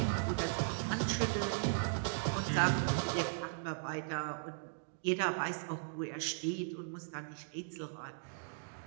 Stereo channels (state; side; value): silent; left; digital silence